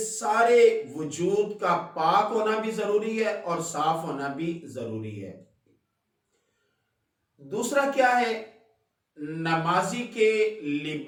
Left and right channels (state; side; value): identical; both; correlation 1.00